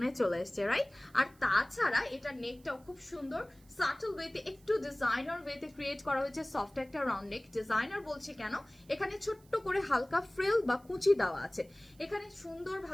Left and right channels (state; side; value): noise; right; hiss, 29 dB below the sound